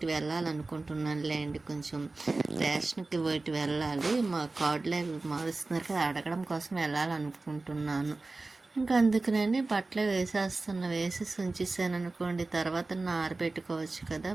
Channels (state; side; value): quieter; left; 3.4 dB